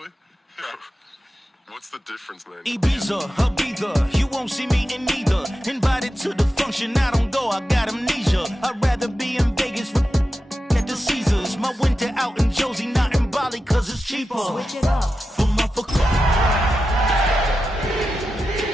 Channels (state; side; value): normal; both; correlation 0.91